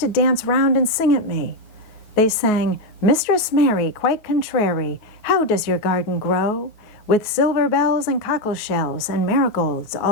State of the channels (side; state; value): right; late; 9.3 ms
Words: to dance round and sing at me. They sang, Mistress Mary quite contrary, how does your garden grow? With silver bells and cockle shells and marigolds